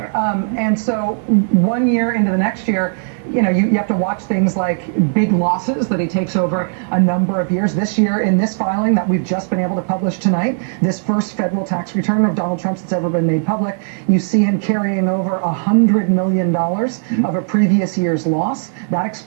And so 1 year into the next year, you know, you have to watch things like big losses that he takes over a number of years. This year, in this filing that we've just been able to publish tonight, this first federal tax return of Donald Trump's that's ever been made public, you see him carrying over $100 million of a previous year's loss. That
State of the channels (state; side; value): silent; left; digital silence